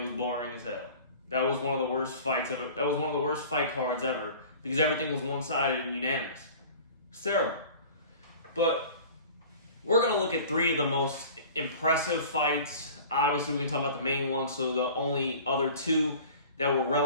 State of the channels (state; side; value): inverted; both; correlation -0.43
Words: boring as hell. That was one of the worst fights ever. That was one of the worst fight cards ever because everything was one-sided and unanimous. It's terrible. But we're going to look at 3 of the most impressive fights. Obviously, we can talk about the main one, so the only other 2 that were